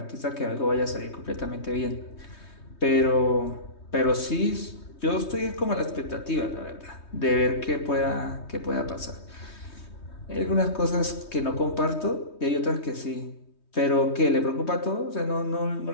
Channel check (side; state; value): right; late; 3.2 ms